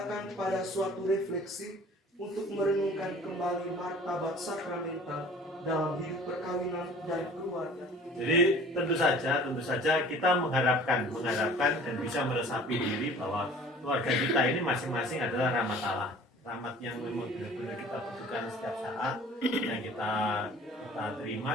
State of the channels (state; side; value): normal; both; correlation 0.47